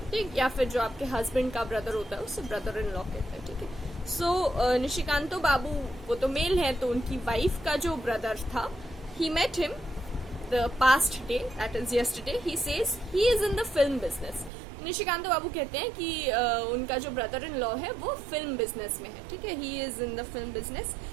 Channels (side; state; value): left; drops out; at 14.5 s